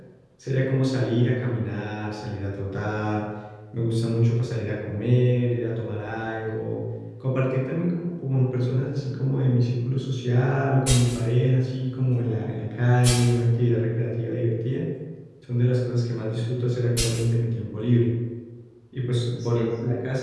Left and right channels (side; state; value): both; identical; correlation 1.00